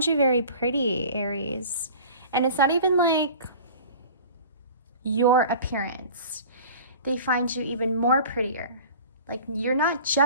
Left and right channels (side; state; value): both; inverted; correlation -0.42